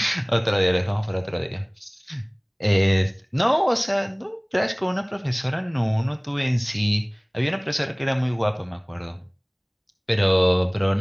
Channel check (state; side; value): identical; both; correlation 1.00